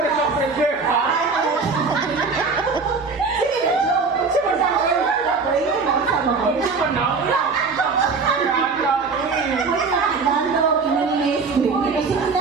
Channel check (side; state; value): left; quieter; 4.5 dB